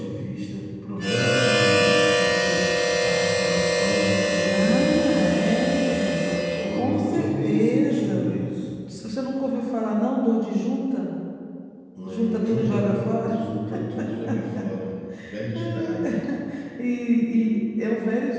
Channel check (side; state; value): both; identical; correlation 1.00